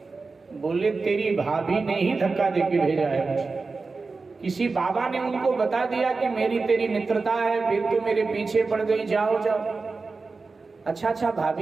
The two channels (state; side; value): quieter; left; 4.1 dB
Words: बोले तेरी भाभी ने ही धक्का देके भेजा है मुझे। किसी बाबा ने उनको बता दिया कि मेरी तेरी मित्रता है, फिर तो मेरे पीछे पड़ गई, जाओ जाओ। अच्छा